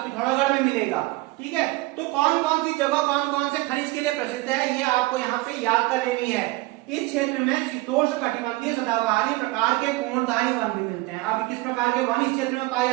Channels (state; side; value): quieter; left; 20.7 dB